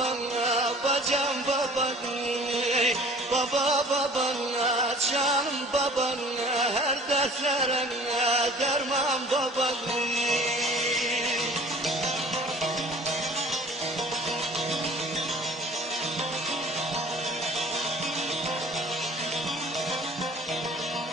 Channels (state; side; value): normal; both; correlation 0.48